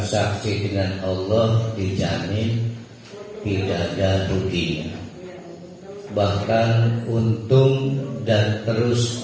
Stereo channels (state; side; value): identical; both; correlation 1.00